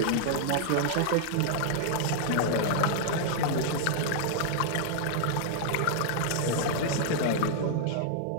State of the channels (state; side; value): different; both; correlation -0.01